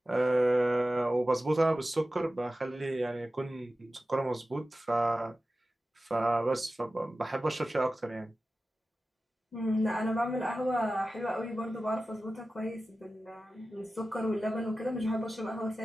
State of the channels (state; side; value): normal; both; correlation 0.94